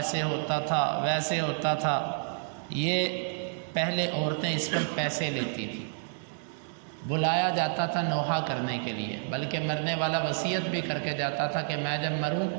ہوتا تھا، ویسے ہوتا تھا۔ یہ پہلے عورتیں اس پر پیسے لیتی تھیں، بلایا جاتا تھا نوحہ کرنے کے لیے، بلکہ مرنے والا وصیت بھی کر کے جاتا تھا کہ میں جب مروں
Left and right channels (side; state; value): left; silent; 58 dB below the other